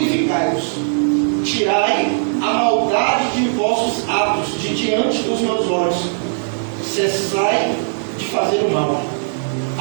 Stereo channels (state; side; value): silent; left; digital silence